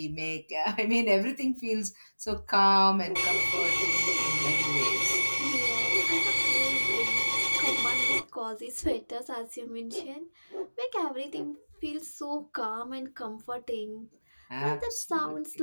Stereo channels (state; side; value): inverted; both; correlation -1.00